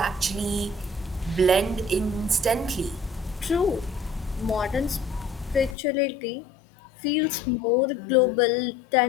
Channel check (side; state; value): right; drops out; at 5.8 s